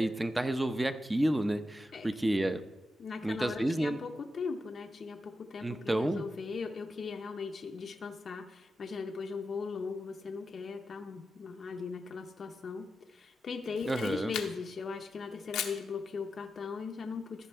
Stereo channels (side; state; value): both; normal; correlation 0.89